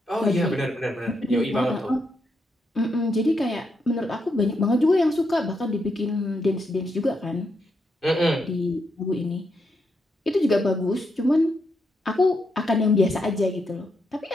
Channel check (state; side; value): normal; both; correlation 0.81